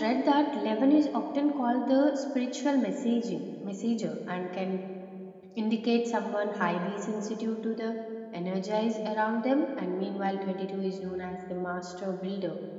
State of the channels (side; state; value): both; identical; correlation 1.00